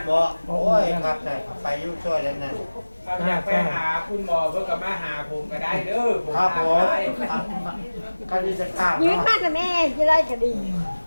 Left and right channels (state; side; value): inverted; both; correlation -1.00